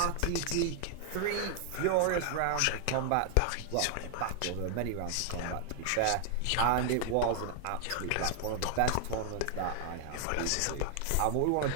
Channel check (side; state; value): both; different; correlation 0.00